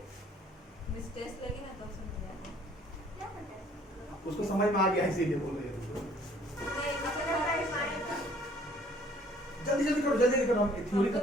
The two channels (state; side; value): normal; both; correlation 0.58